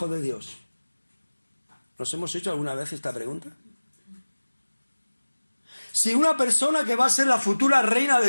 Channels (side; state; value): both; inverted; correlation -1.00